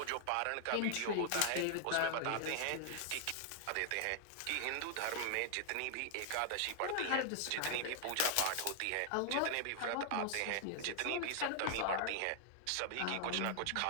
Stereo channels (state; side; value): different; both; correlation 0.00